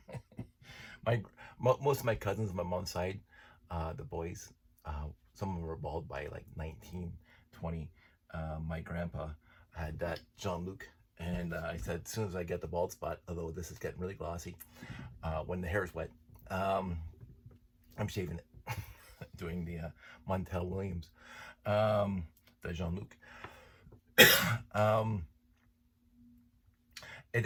Most of my cousins on my mom's side, the boys, some of them were bald by like 19, 20. My grandpa had that Jean-Luc, and I said as soon as I get the bald spot, although this is getting really glossy, when the hair is wet, I'm shaving it, doing the Montel Williams, the Jean-Luc.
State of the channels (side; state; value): both; identical; correlation 1.00